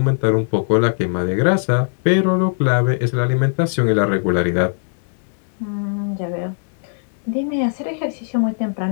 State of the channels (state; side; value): silent; right; digital silence